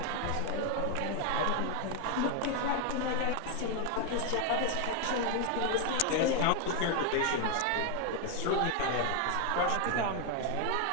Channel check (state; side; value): different; both; correlation 0.01